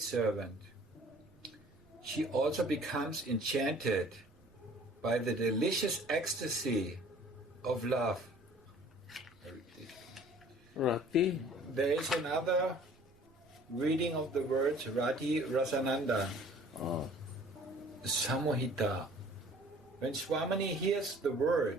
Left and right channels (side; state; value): right; noise; rumble, 29 dB below the sound